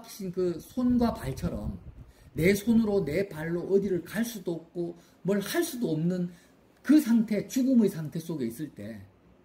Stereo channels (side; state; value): both; identical; correlation 1.00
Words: 그 손과 발처럼 내 손으로 내 발로 어디를 갈 수도 없고 뭘 할 수도 없는 그 상태, 죽음의 상태 속에 있을 때